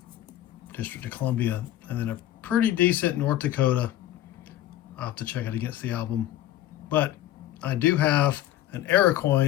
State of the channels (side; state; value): right; quieter; 13.2 dB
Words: District of Columbia, and then a pretty decent North Dakota. I'll have to check it against the album, but I do have an error